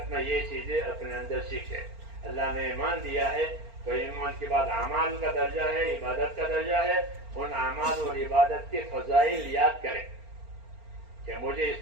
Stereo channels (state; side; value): late; left; 4.4 ms